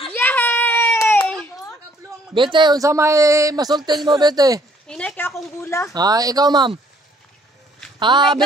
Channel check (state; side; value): normal; both; correlation 0.63